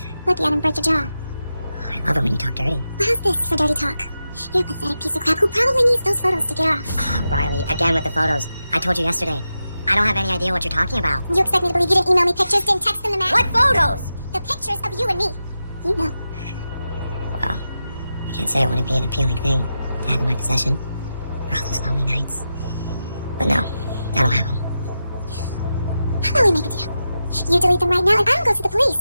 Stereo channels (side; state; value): both; inverted; correlation -0.90